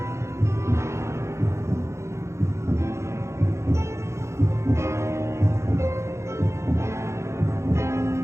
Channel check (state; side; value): late; left; 0.14 ms